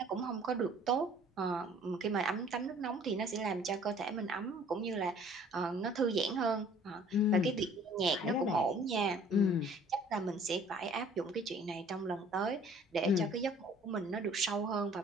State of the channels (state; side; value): normal; both; correlation 0.53